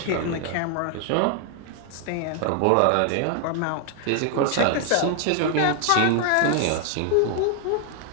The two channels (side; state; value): both; different; correlation 0.00